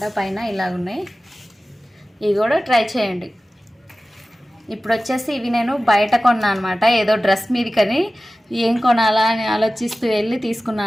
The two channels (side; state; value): both; normal; correlation 0.96